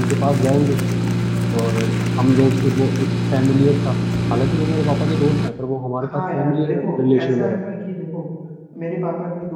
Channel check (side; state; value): both; identical; correlation 1.00